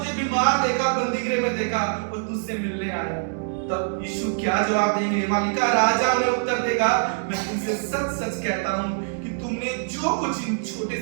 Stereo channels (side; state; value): left; silent; digital silence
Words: बीमार देखा बंदी गृह में देखा और तुझसे मिलने आया। तब यीशु क्या जवाब देंगे, मालिका राजा उन्हें उत्तर देगा, मैं तुमसे सच सच कहता हूं कि तुमने जो कुछ इन छोटे